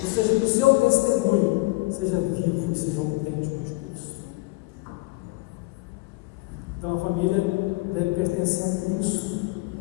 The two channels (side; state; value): right; quieter; 22.7 dB